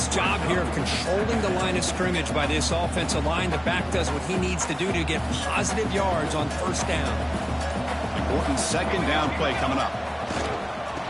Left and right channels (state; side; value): identical; both; correlation 1.00